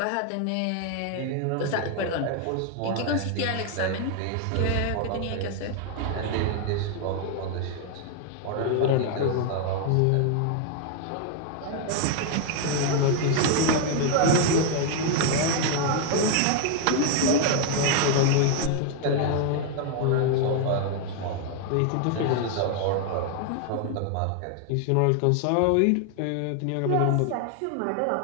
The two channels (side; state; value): both; different; correlation 0.00